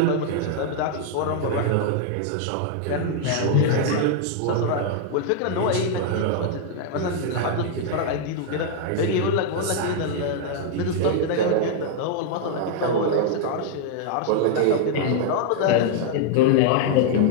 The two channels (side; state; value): both; different; correlation -0.01